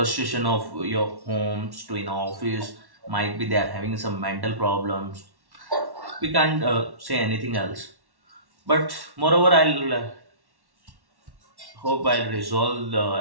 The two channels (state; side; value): late; left; 1.1 ms